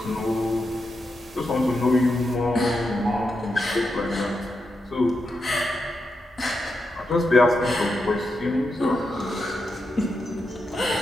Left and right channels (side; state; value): both; normal; correlation 0.86